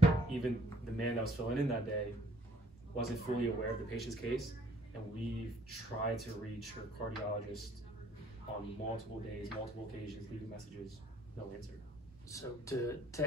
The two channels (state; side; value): normal; both; correlation 0.61